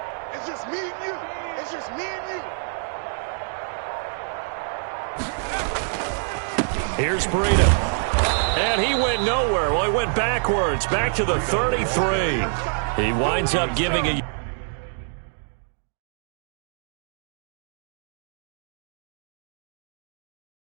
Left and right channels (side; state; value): left; silent; 61 dB below the other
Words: It's just me and you. Here's Breida. And he went nowhere. Well, he went backwards, back to the 33. He winds up giving a...